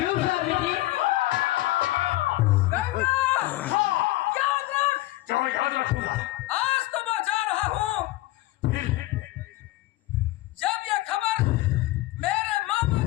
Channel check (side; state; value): right; quieter; 17.7 dB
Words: स्वामी जी? याद रखूंगा। आज तो मैं जा रहा हूँ। फिर जब ये खबर मेरे मामा